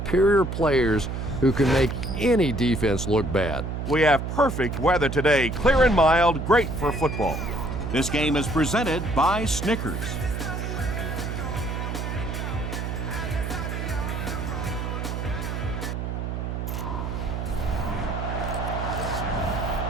players who can make any defense look bad. We have perfect weather today, clear and mild, great for football. This game is presented by Snickers.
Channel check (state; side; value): noise; right; hum, 4 dB below the sound